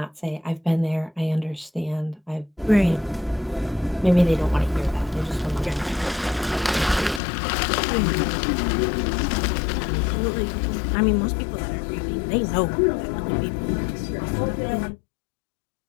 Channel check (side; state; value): right; drops out; at 7.2 s